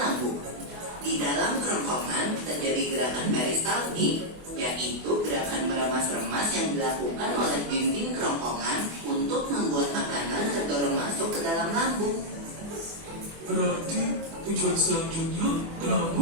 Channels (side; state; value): left; late; 24 ms